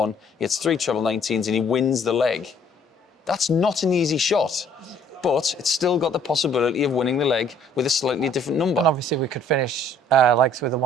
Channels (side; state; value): both; normal; correlation 0.59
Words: he hits 3 treble 19s and he wins the leg. That's not an easy shot, but it's still got the possibility of winning the leg with a slightly different number. And obviously we could finish legs with a